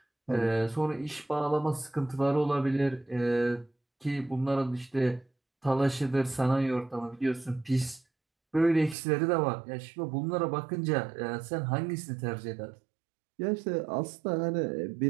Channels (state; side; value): drops out; left; at 9.0 s